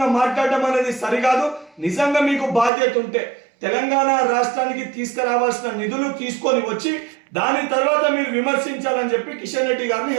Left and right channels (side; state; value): left; drops out; at 2.7 s